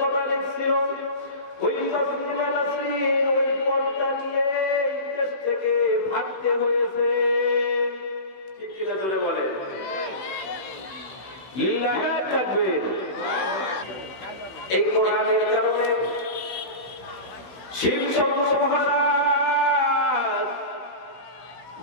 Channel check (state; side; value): late; right; 15 ms